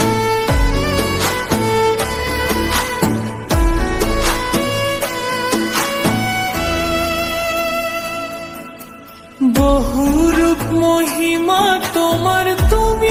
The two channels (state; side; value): identical; both; correlation 1.00